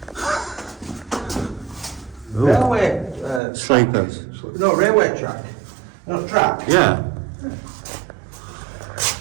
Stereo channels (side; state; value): left; drops out; at 3.4 s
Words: Ooh. Railway... Sleepers. No, railway track. No, track. Yeah.